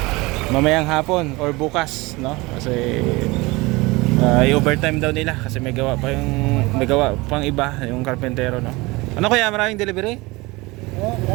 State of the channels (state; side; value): quieter; left; 22.9 dB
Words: Mamayang hapon or bukas, no. Kasi i-overtime daw nila kasi may gawa pang iba yung karpentero, no. Ano kaya, maraming delivery?